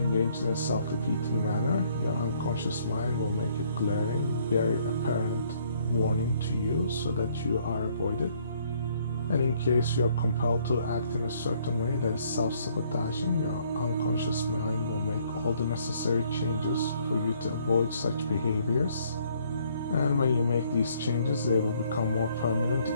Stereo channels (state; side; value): inverted; both; correlation -0.65